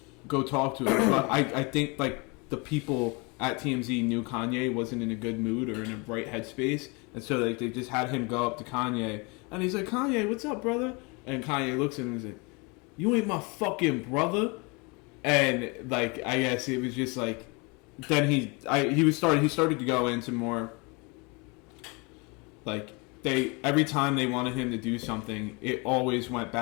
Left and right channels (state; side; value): quieter; right; 29.4 dB